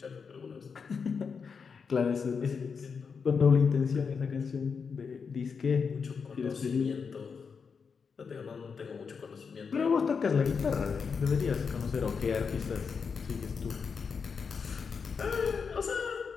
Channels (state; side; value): quieter; right; 5.7 dB